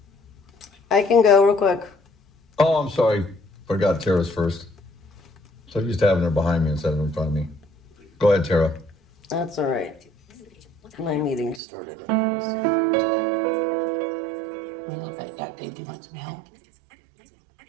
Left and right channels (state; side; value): drops out; left; at 11.6 s